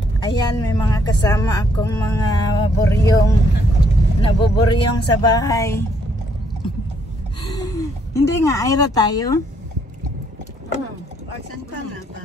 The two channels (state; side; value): normal; both; correlation 0.70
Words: Ayan, may mga kasama akong mga buryong. Nabuburyong sa bahay. Hindi nga, Ira tayo. Saan pa nga ba?